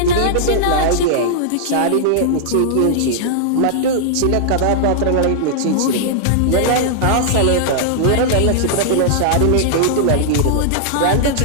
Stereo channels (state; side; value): different; both; correlation -0.01